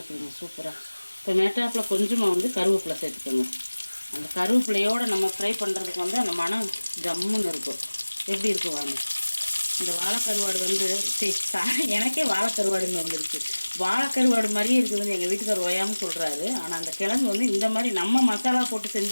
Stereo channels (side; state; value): both; inverted; correlation -1.00